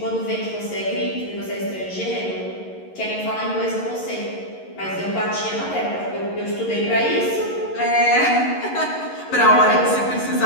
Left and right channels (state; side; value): late; right; 11 ms